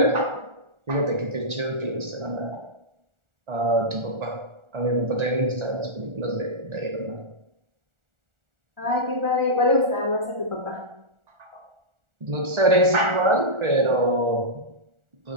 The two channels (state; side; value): late; left; 1.4 ms